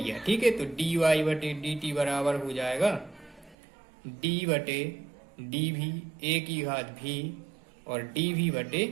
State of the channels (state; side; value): drops out; left; at 3.6 s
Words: ठीक है, तो dy/dt बराबर हो जाएगा d/dv a की घात v और